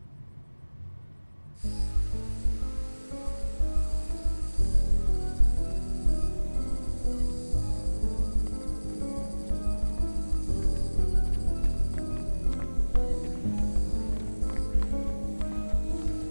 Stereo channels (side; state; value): both; inverted; correlation -1.00